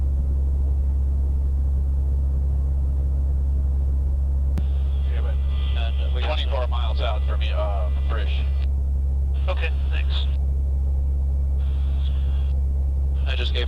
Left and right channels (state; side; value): identical; both; correlation 1.00